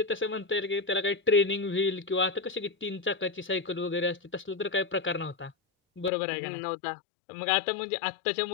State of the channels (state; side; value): drops out; right; at 6.1 s